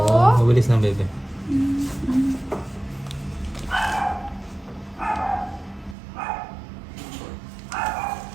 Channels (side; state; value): left; drops out; at 6.0 s